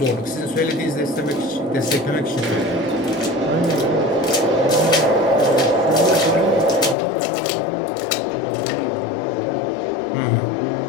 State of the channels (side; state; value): right; drops out; at 7.0 s